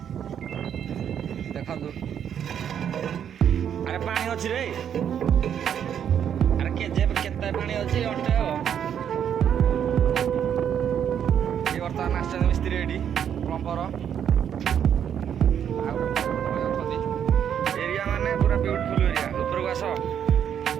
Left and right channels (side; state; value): left; quieter; 8.9 dB